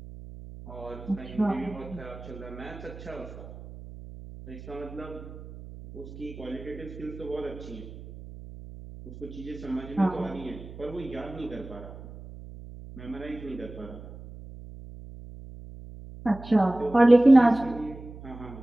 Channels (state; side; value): noise; right; hum, 14 dB below the sound